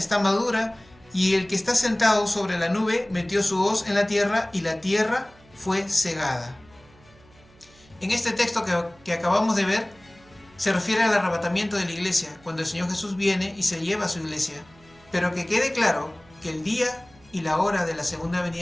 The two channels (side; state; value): right; noise; hum, 27 dB below the sound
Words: madura. Y el que está sentado sobre la nube metió su hoz en la tierra, y la tierra fue segada. En este texto que acabamos de ver, se refiere al arrebatamiento de la iglesia, cuando el Señor Jesús viene y se lleva a su iglesia. Pero que quede claro que el día y la hora de la segunda